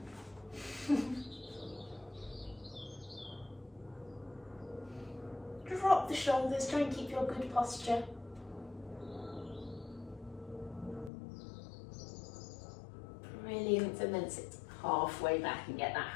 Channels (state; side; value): drops out; right; at 11.1 s